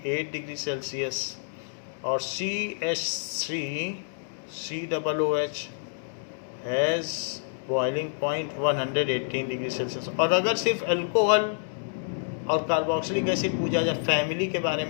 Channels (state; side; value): silent; right; digital silence